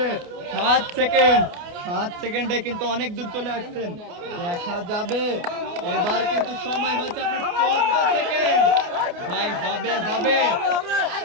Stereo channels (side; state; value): left; late; 28 ms